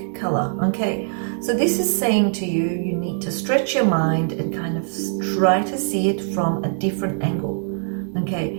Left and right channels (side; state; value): left; silent; digital silence